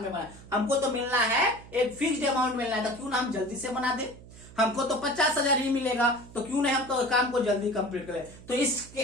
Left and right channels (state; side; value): noise; right; hum, 19 dB below the sound